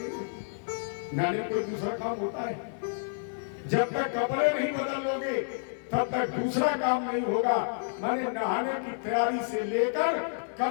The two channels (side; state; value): right; silent; digital silence